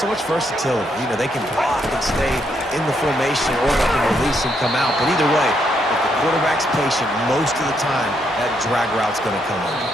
much versatility. You know, they can block and stay in the formation, or they can release and come out. But either way, if the quarterback's patient, most of the time, that drag route's going to come over.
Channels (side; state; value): both; normal; correlation 0.76